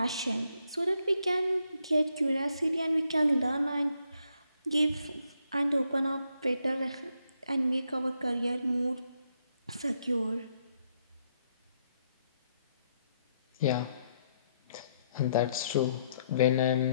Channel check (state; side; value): inverted; both; correlation -0.75